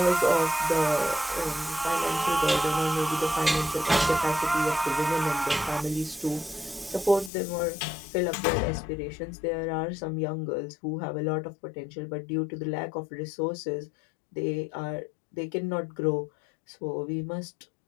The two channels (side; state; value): right; drops out; at 7.3 s